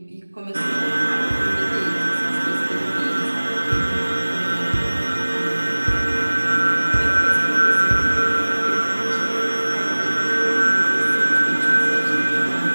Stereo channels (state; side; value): inverted; both; correlation -1.00